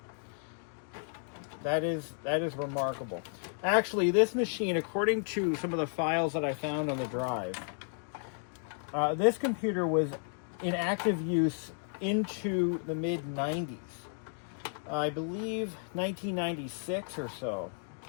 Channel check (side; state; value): right; silent; digital silence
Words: That is remarkable. Actually, this machine, according to some of the files that I found on the drive, this computer was in active use into the mid-90s. I believe 1996 or so.